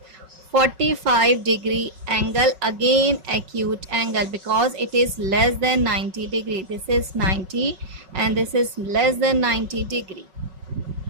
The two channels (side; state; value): left; late; 5.4 ms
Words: 45 degree angle, again acute angle because it is less than 90 degree. This is 90 and this is less than 90 degree.